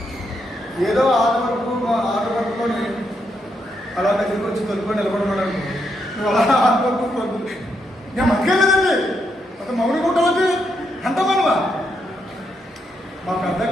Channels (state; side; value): normal; both; correlation 0.79